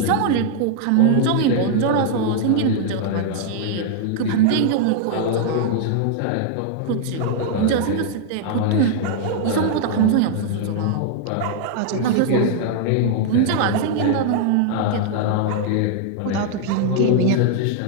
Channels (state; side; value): different; both; correlation -0.01